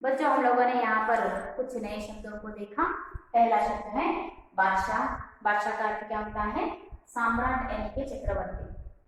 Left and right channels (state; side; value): identical; both; correlation 1.00